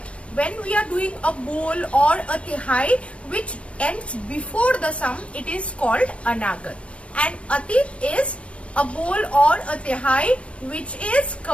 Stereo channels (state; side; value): late; right; 0.061 ms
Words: when we are doing a bol or a Tihai which ends before the sum, it is called Anagat. And Atit is a bol or a Tihai which is